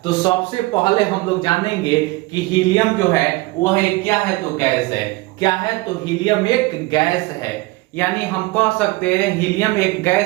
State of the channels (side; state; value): left; quieter; 21.8 dB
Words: तो सबसे पहले हम लोग जानेंगे कि हीलियम जो है वह क्या है। तो गैस है। क्या है? तो हीलियम एक गैस है। यानी हम कह सकते हैं हीलियम एक